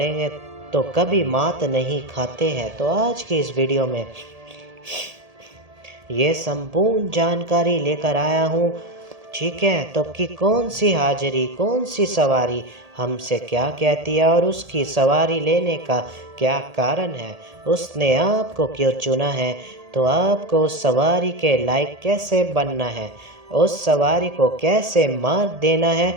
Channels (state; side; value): late; left; 1.8 ms